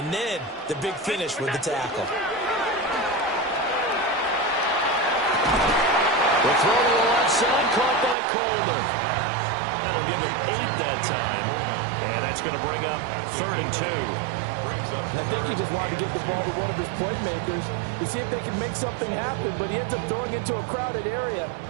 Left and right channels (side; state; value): left; drops out; at 8.2 s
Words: then the big finish with the tackle. The throw to the left side, caught by Coleman. That'll give him 8 that time. And that's going to bring up 3rd and 2. And I think he just wanted to get the ball to one of his playmakers to see if they can make something happen, but he ends up throwing into a crowded area.